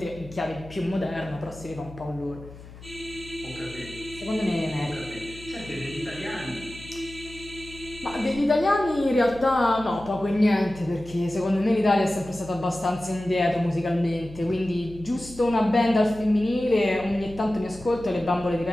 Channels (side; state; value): left; noise; hum, 17 dB below the sound